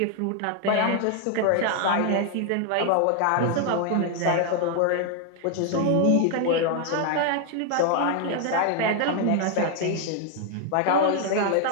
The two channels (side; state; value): both; different; correlation 0.00